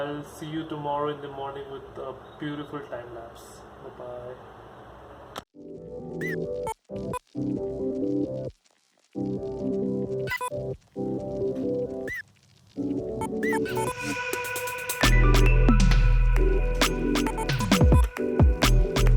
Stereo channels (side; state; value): both; identical; correlation 1.00